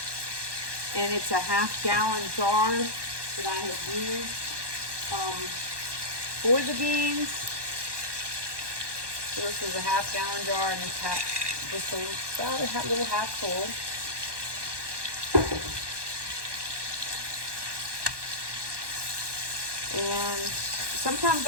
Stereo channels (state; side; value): late; left; 1.2 ms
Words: and it's a 1/2 gallon jar that I have used for the beans. So this was a 1/2 gallon jar, and it's just about a little half full. And sometimes